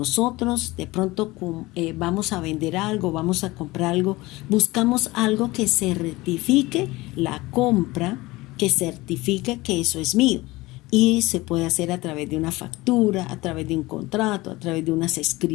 de pronto vamos a vender algo, vamos a comprar algo, buscamos algo que certifique la compra, que certifique que eso es mío. Y se puede hacer a través de una factura, a través de un contrato, a través de unas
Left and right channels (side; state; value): right; quieter; 20.6 dB